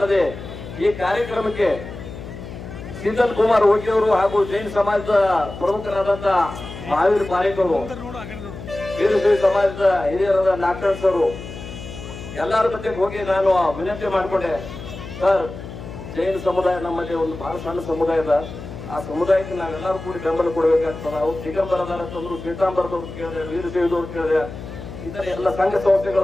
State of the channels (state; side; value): noise; left; hum, 11 dB below the sound